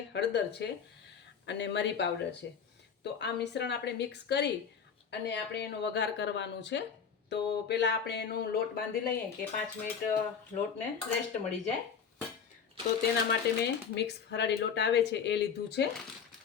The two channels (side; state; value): right; quieter; 6.8 dB